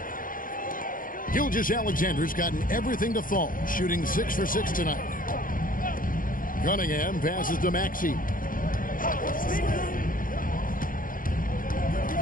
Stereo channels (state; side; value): late; right; 0.40 ms